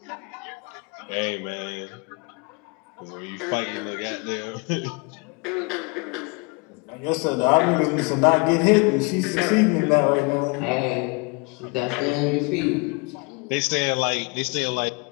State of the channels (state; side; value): quieter; right; 30.5 dB